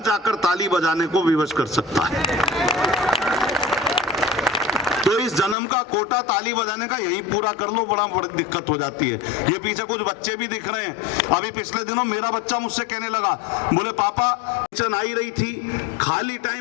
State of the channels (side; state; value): right; drops out; at 5.6 s